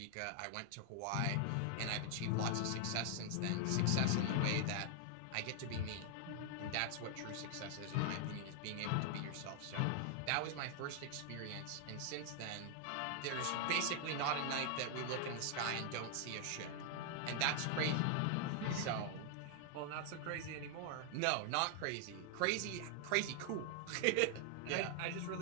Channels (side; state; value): both; different; correlation 0.00